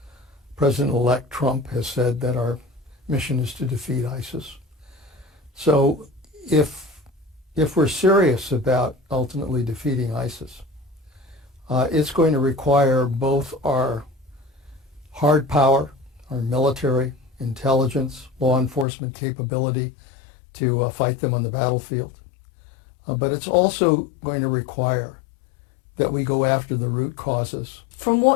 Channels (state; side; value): drops out; right; at 18.9 s